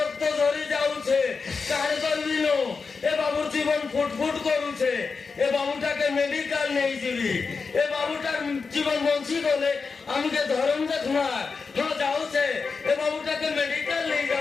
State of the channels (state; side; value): quieter; right; 4.8 dB